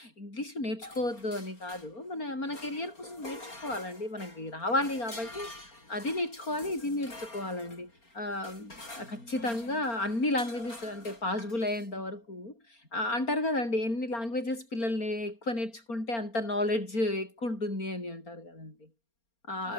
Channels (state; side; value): late; right; 4.3 ms